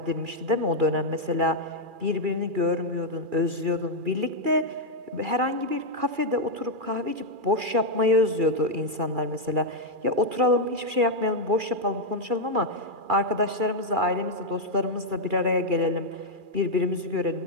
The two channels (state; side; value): late; left; 2.4 ms